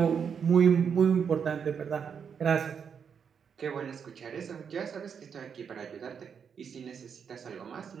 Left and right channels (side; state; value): left; quieter; 7.0 dB